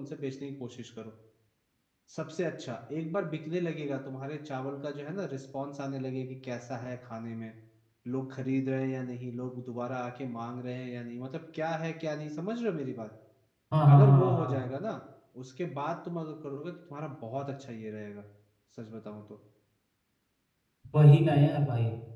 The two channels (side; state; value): both; identical; correlation 1.00